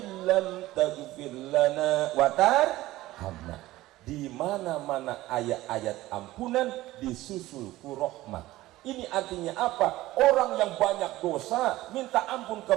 taghfir lana wa tarhamna. Di mana-mana ayat-ayat ampunan disusul ku rahmat. Ini artinya apa? Orang yang banyak dosa minta ampun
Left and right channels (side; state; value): left; quieter; 16.9 dB